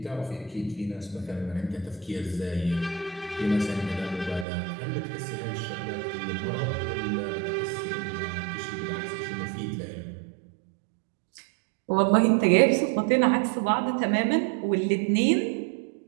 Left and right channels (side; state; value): left; drops out; at 4.5 s